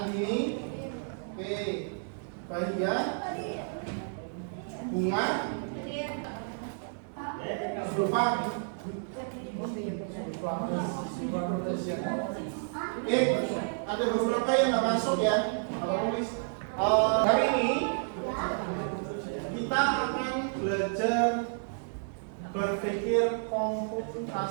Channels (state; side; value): silent; left; digital silence